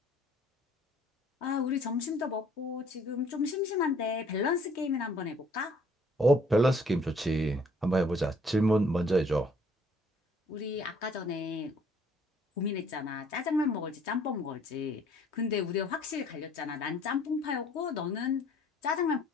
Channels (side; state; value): both; normal; correlation 0.59